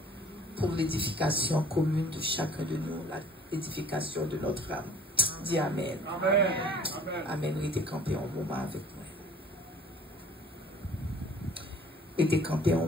pour l'édification commune de chacun de nous, l'édification de notre âme. Dis Amen. Amen. Amen. Restez campé un moment avec moi. Restez campé un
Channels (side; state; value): both; normal; correlation 0.52